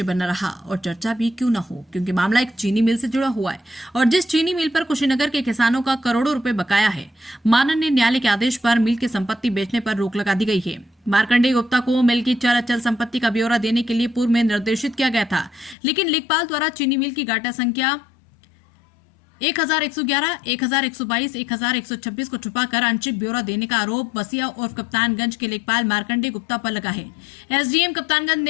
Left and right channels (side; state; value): right; drops out; at 15.8 s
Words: बना रहा और चर्चा भी क्यों न हो, क्योंकि मामला एक चीनी मिल से जुड़ा हुआ है और जिस चीनी मिल पर कुशीनगर के किसानों का करोड़ों रुपए बकाया है, माननीय न्यायालय के आदेश पर मिल की संपत्ति बेचने पर रोक लगा दी गई है। मार्कंडेय गुप्ता को मिल की चल अचल संपत्ति का ब्यौरा देने के लिए पूर्व में निर्देशित किया गया था, लेकिन लेखपाल द्वारा चीनी मिल की गाटा संख्या 1111, 1122, 1126 को छुपाकर आंशिक ब्यौरा देने का आरोप बसिया और कप्तानगंज के लेखपाल मार्कंडेय गुप्ता पर लगा है। एसडीएम कप्तानगंज